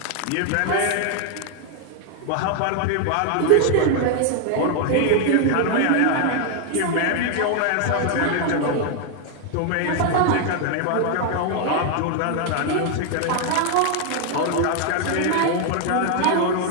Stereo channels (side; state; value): both; different; correlation 0.00